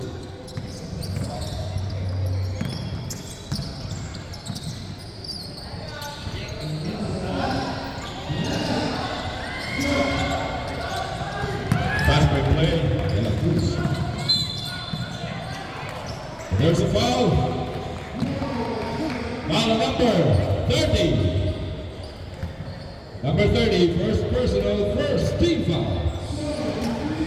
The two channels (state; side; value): identical; both; correlation 1.00